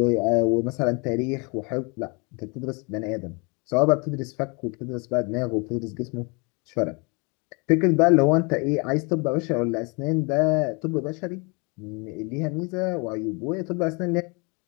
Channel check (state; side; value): quieter; right; 31.1 dB